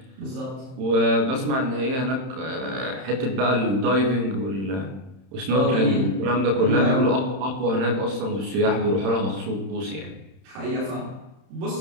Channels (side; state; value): left; late; 31 ms